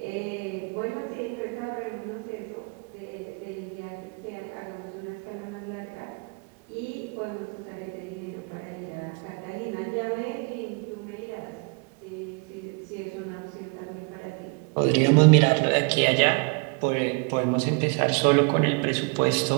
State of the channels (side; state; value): left; quieter; 33.2 dB